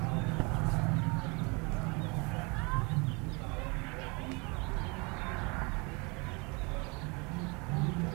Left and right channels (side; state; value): left; quieter; 29.8 dB